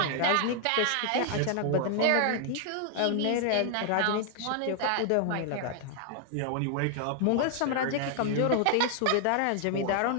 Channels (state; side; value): different; both; correlation 0.00